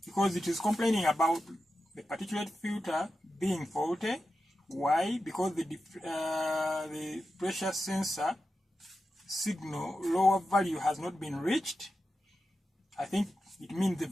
because it is complaining about the particulate filter being faulty. Why? Because the pressure sensor signal lower value has not been reached. I think it means the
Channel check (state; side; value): normal; both; correlation 0.91